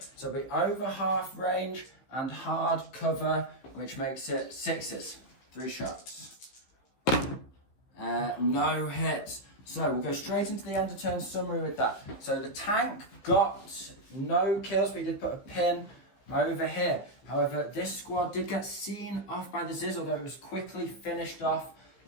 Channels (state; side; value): late; right; 15 ms